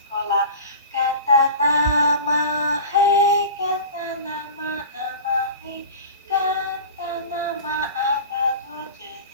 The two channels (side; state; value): both; inverted; correlation -0.35